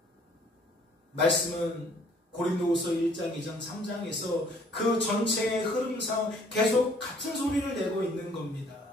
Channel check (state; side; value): normal; both; correlation 0.60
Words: 말씀은 고린도후서 1장, 2장, 3장에서 그 전체의 흐름상 계속 같은 소리를 내고 있는 겁니다.